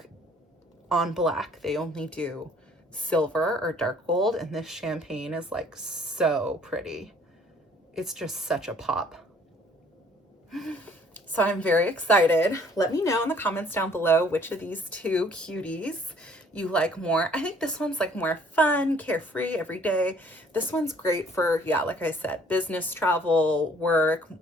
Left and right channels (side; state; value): both; normal; correlation 0.58